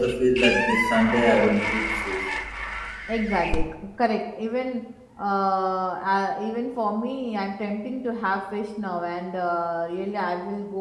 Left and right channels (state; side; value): identical; both; correlation 1.00